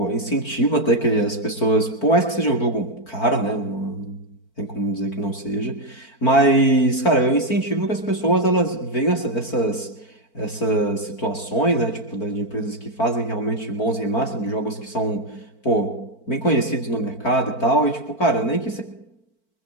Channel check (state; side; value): late; right; 4.5 ms